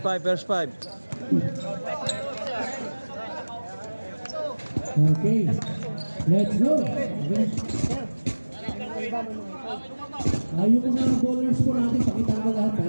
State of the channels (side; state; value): both; inverted; correlation -1.00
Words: five. Okay. Let's go. Yung mga bowlers po natin, pakita mo lahat